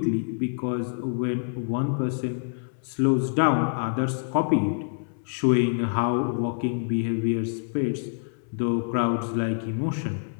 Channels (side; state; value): right; silent; 61 dB below the other